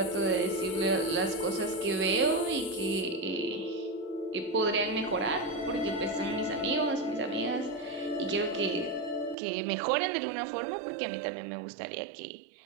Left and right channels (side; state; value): left; drops out; at 9.3 s